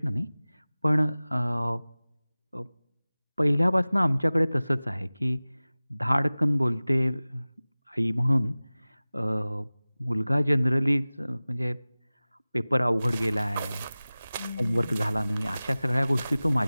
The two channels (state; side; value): inverted; both; correlation -0.98